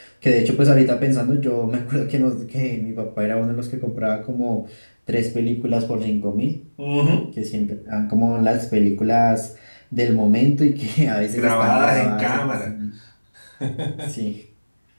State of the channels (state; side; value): inverted; both; correlation -1.00